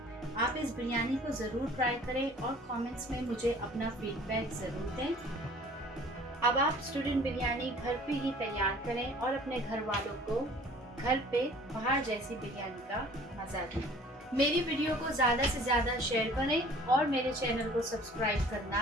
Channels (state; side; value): normal; both; correlation 0.50